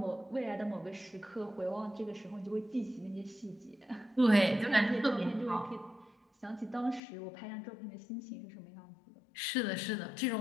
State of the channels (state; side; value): drops out; right; at 7.0 s